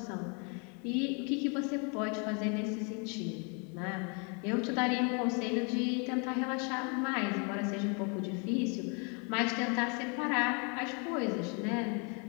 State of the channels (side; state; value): right; quieter; 35.6 dB